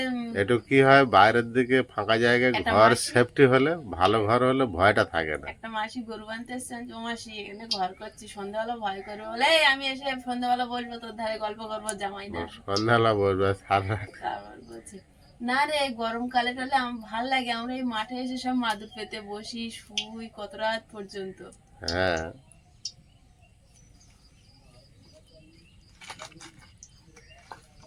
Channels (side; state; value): both; identical; correlation 1.00